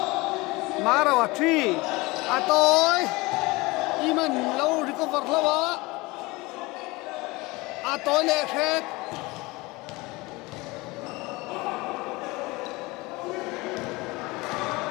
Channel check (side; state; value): right; quieter; 23.0 dB